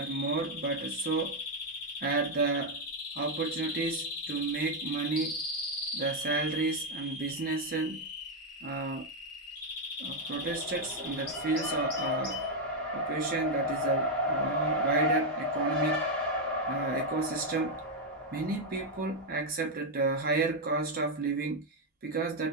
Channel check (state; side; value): normal; both; correlation 0.01